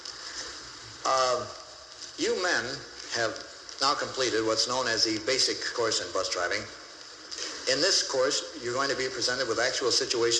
You men have now completed what's known as the basic course in bus driving. In this course, you're going to be presented with actual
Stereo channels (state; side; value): identical; both; correlation 1.00